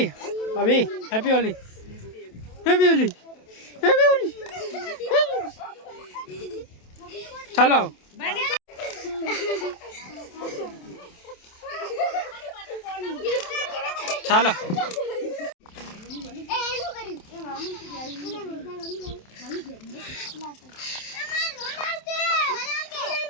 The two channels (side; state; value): right; late; 27 ms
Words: અભી હેપી હોલી હેપી હોલી હેપી હોલી. ચાલો ચાલો